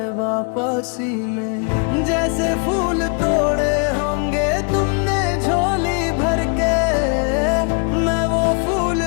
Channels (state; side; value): quieter; right; 37.4 dB